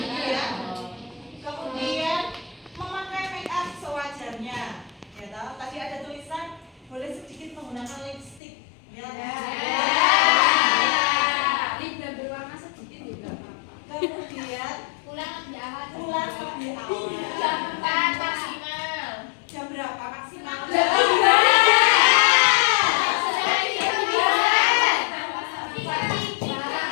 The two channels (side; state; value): right; drops out; at 8.4 s